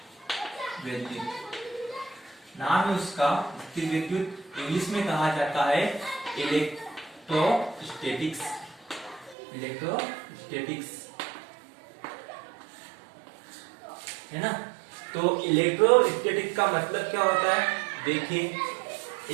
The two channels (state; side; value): drops out; left; at 9.3 s